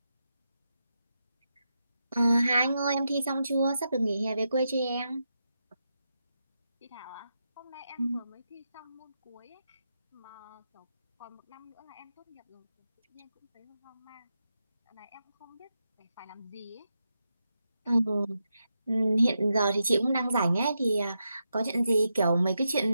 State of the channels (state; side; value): inverted; both; correlation -0.86